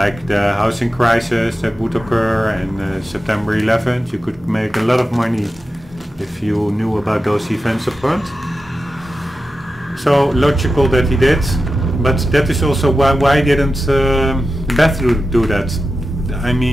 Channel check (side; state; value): both; normal; correlation 0.92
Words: the housing crisis that would occur and September 11th. You could make a lot of money if you knew about those events up front. So logical that he did, but that is also why didn't Beth do that? I